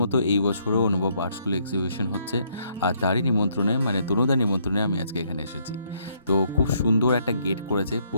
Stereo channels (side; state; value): both; inverted; correlation -0.70